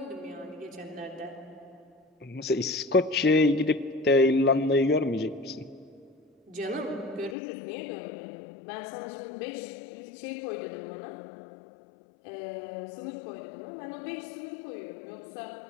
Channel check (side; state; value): right; drops out; at 7.4 s